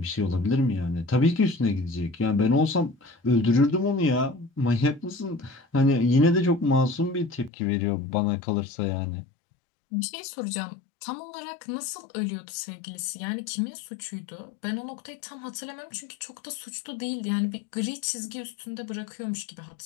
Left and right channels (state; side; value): drops out; right; at 7.5 s